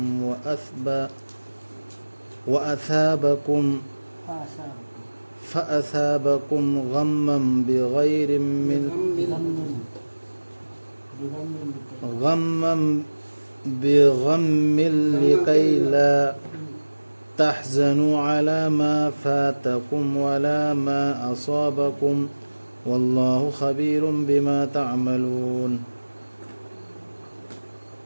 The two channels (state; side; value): inverted; both; correlation -1.00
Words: فأثابكم غما بغم لكي لا تحزنوا على ما فاتكم ولا ما أصابكم والله خبير بما تعملون